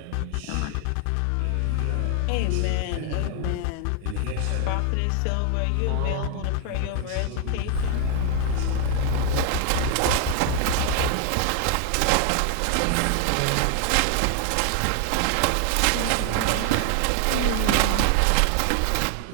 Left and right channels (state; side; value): different; both; correlation 0.00